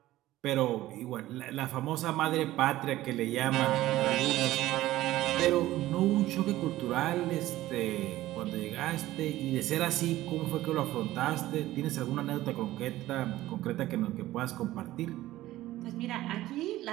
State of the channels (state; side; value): quieter; left; 15.7 dB